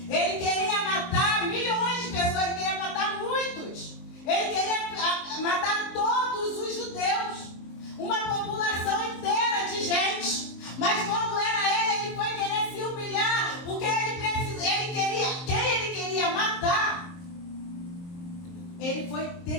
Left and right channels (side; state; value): right; late; 23 ms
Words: Ele queria matar milhões de pessoas, ele queria matar muitos. Ele queria matar todos os judeus, uma população inteira de gente. Mas quando era ele foi querer se humilhar, porque quem ele queria matar, ele foi